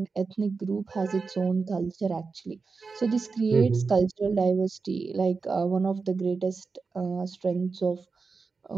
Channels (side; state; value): left; quieter; 4.5 dB